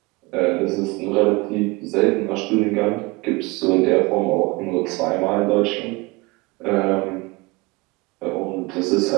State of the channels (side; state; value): left; quieter; 24.5 dB